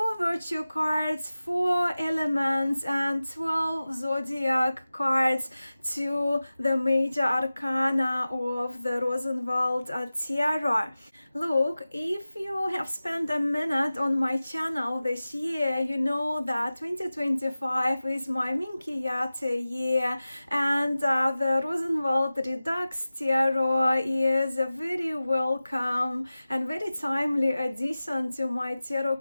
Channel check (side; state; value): both; inverted; correlation -0.96